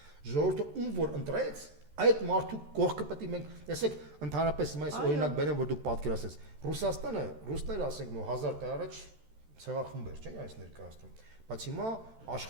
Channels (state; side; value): late; left; 13 ms